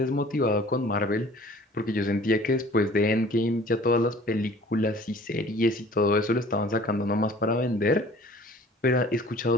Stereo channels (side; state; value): both; normal; correlation 0.49